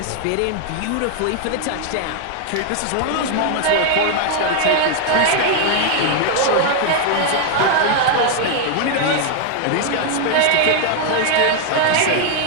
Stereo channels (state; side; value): different; both; correlation 0.00